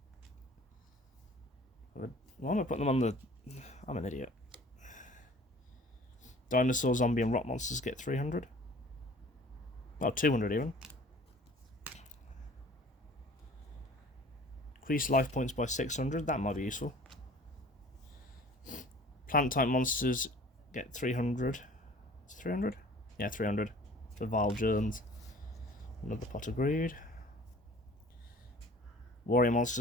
Why am I putting them on the... I'm an idiot. Dinosaur, zombie, and rock monsters get 300. Oh, 200 even. Increase life points by 600. That might be useful. Plant type monsters get 300. 300? Yeah, 300 for vile germs. Another pot of greed. Warrior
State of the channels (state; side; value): normal; both; correlation 0.47